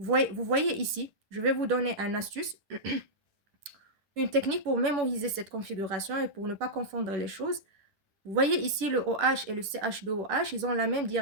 voyez ici, je vais vous donner une astuce, une technique pour mémoriser cette configuration et pour ne pas confondre les choses. Vous voyez ici le OH et le CH2OH, ils ont la même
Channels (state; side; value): late; left; 10 ms